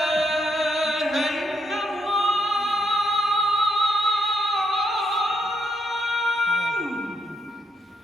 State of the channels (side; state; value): both; normal; correlation 0.78